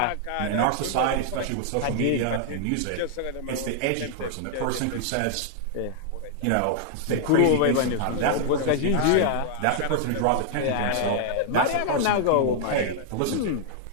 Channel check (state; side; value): different; both; correlation 0.00